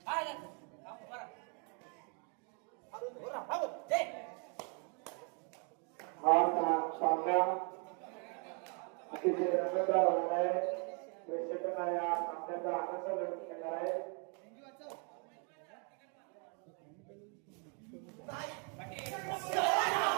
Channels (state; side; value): quieter; left; 37.6 dB